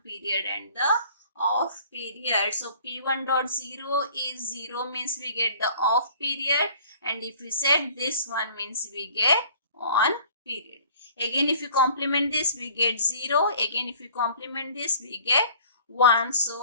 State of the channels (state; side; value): inverted; both; correlation -0.52